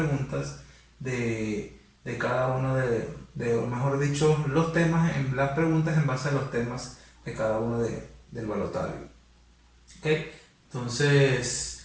de cada uno o mejor dicho, los temas, las preguntas en base a los temas de cada uno del balotario. ¿Ok?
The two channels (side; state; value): both; identical; correlation 1.00